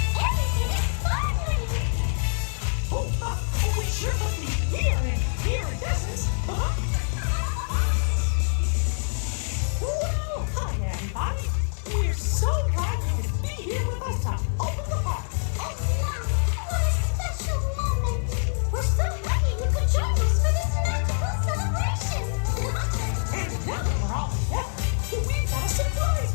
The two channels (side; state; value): right; silent; digital silence